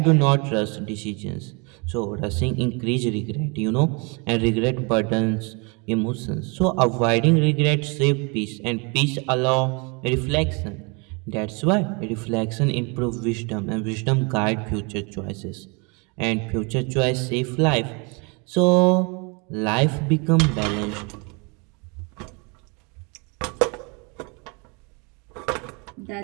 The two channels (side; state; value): left; quieter; 31.7 dB